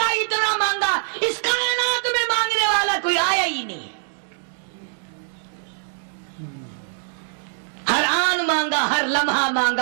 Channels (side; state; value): left; silent; digital silence